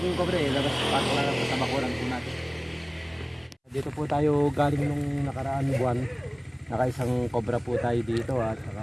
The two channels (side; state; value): both; identical; correlation 1.00